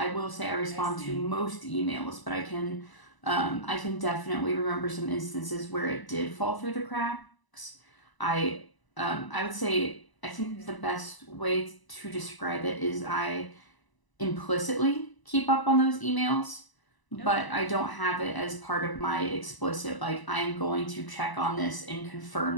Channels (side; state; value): right; late; 1.0 ms